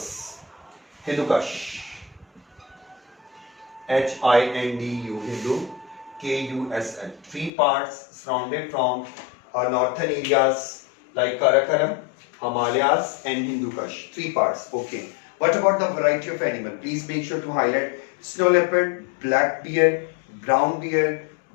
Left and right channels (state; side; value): drops out; right; at 7.5 s